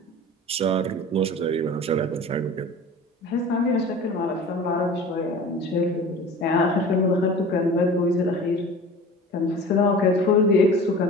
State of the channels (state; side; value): normal; both; correlation 0.39